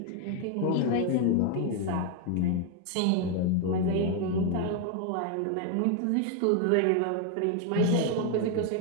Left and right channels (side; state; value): both; different; correlation 0.01